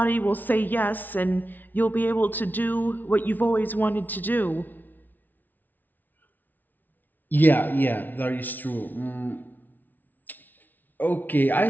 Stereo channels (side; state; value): right; late; 0.084 ms